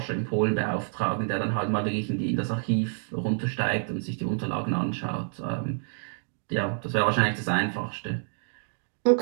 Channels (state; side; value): silent; left; digital silence